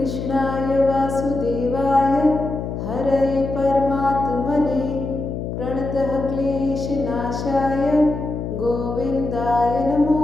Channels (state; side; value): noise; left; hum, 5 dB below the sound